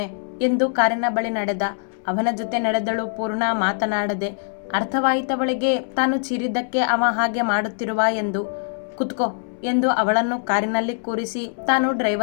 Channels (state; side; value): silent; right; 64 dB below the other